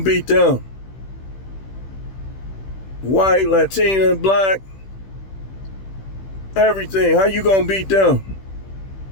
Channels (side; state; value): right; late; 15 ms